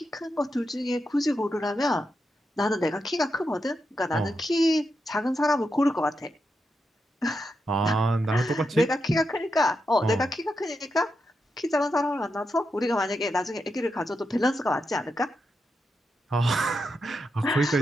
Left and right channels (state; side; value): normal; both; correlation 0.86